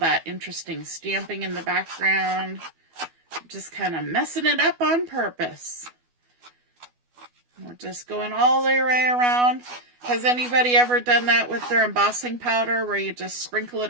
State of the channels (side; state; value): left; late; 12 ms